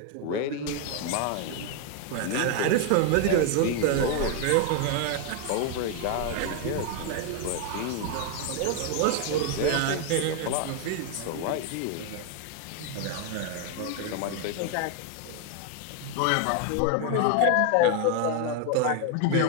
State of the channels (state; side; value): different; both; correlation 0.00